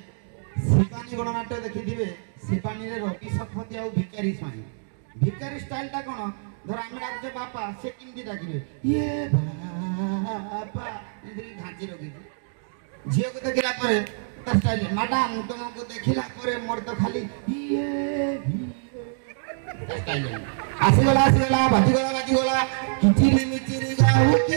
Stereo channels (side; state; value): left; silent; digital silence